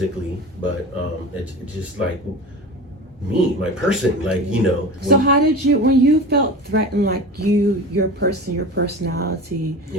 but it's just like me, my person, like, So how did you, when you felt threatened, like your personality,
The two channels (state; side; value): normal; both; correlation 0.32